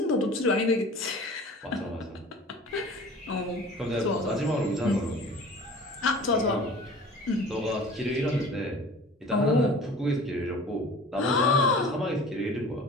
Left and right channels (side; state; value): both; normal; correlation 0.43